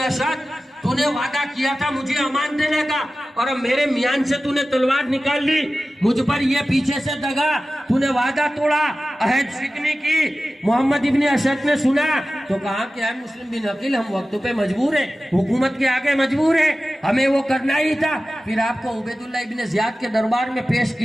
تو نے وعدہ کیا تھا مجھے امان دینے کا، اور اب میرے میان سے تو نے تلوار نکال لی، مجھ پر یہ پیچھے سے دگا، تو نے وعدہ توڑا، عہد شکنی کی۔ محمد ابن اشد نے سنا تو کہا کہ اے مسلم بن عقیل، ہم وقت پہ مجبور ہیں، حکومت کے آگے مجبور ہیں، ہمیں وہ کرنا ہی تھا۔ پھر آپ کو عبید اللہ ابن زیاد کے دربار میں پیش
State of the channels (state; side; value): normal; both; correlation 0.95